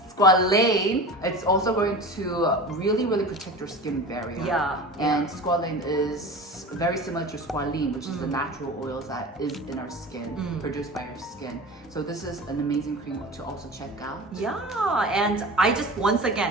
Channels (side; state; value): both; normal; correlation 0.33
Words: squalane, it's also going to really, really protect your skin barrier. Yeah. And squalane is very similar to squalene, which is the natural oils that is in our skin, produced by our skin. So this is an amazing cream to also check out. Yeah, and I just once